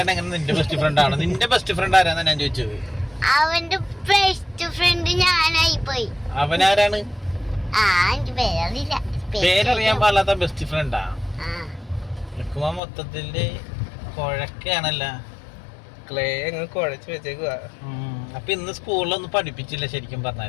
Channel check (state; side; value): drops out; right; at 12.8 s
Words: എങ്ങനെ നിന്റെ ബെസ്റ്റ് ഫ്രണ്ട് ആണ്? നിന്റെ ബെസ്റ്റ് ഫ്രണ്ട് ആരാന്നാ ഞാൻ ചോദിച്ചത്. അവന്റെ ബെസ്റ്റ് ഫ്രണ്ട് ഞാനായി പോയി. അവനാരാണ്? എനിക്ക് പേരറിയില്ല. പേരറിയാൻ പാടില്ലാത്ത ബെസ്റ്റ് ഫ്രണ്ടാ? മൊത്തത്തില് കുഴക്കാണല്ല. ക്ലേ അങ്ങ് കുഴച്ച് വെച്ചേക്കുവാ. അപ്പൊ ഇന്ന് സ്കൂളിലൊന്നും പഠിപ്പിച്ചില്ല ശരിക്കും